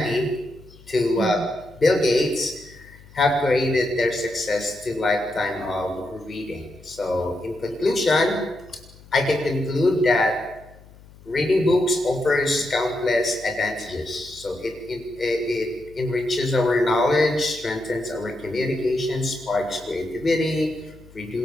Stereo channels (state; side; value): noise; left; hum, 23 dB below the sound